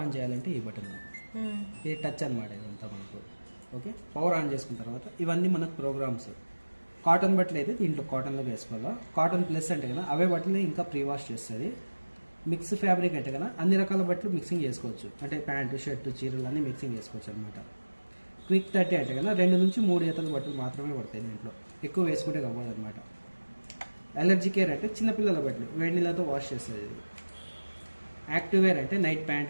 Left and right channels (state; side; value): inverted; both; correlation -1.00